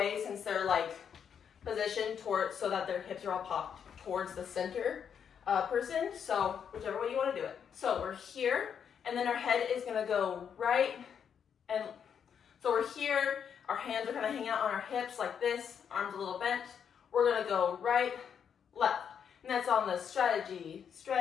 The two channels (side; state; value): right; quieter; 7.7 dB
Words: since they're like positioned towards so that their hips are all popped towards the center person. So whichever way you want to do it. So we're here, and then our head is going to go right. And so we're here. Our hands are going to hang out on our hips like this, arms a little bent. We're going to go right, left. And that's on the strategy.